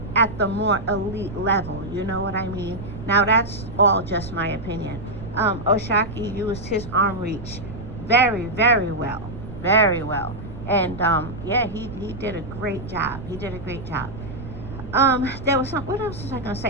at the more elite level. You know what I mean? Now, that's all just my opinion. Oshaki used his arm reach very, very well. Very well. And, yeah, he did a great job. He did a great job. There was what else was I going to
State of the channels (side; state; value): right; noise; rumble, 11 dB below the sound